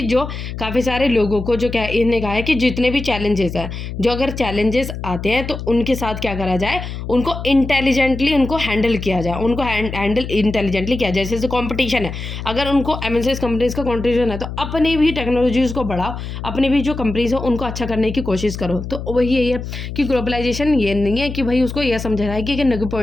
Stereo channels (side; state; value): left; noise; hum, 7 dB below the sound